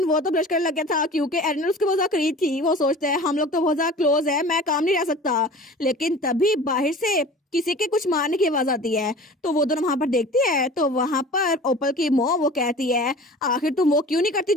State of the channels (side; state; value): both; normal; correlation 0.40